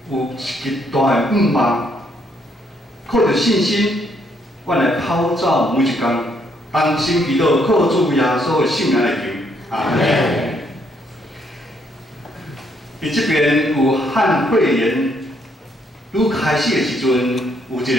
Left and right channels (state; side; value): normal; both; correlation 0.71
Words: 有一极大的盼望，靠着信心，阮来跑走每一天。同心祈祷，靠主耶稣的圣名来求，阿门。伫这边有汉肺炎愈开始的时阵，有一个